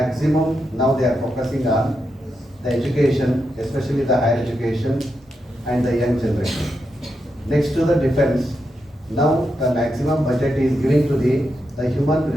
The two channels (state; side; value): normal; both; correlation 0.85